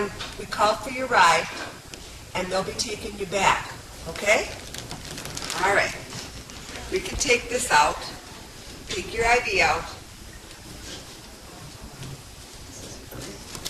we called for your ride, and they'll be taking you back, okay? All right. We can take this out. Take your IV out.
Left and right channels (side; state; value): both; identical; correlation 1.00